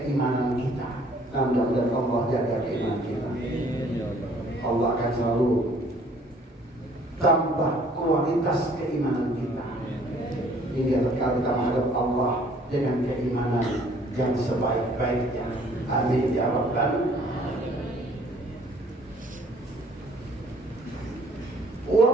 kita. Mudah-mudahan Allah jaga keimanan kita. Allah akan selalu tambah kualitas keimanan kita. Ini adalah kita menghadap Allah dengan keimanan yang sebaik-baiknya. Amin ya Rabbal. Wa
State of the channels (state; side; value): normal; both; correlation 0.58